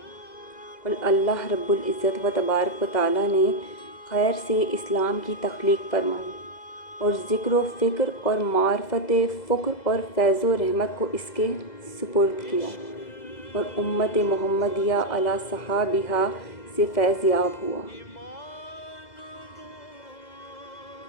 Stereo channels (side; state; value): right; late; 2.0 ms